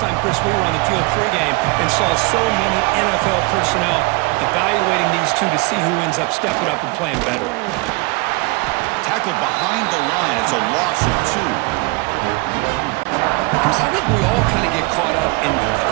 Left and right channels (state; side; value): quieter; left; 26.3 dB